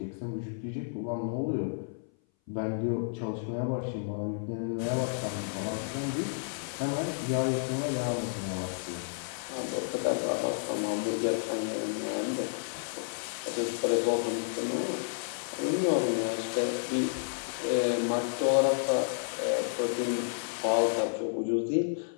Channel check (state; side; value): silent; right; 57 dB below the other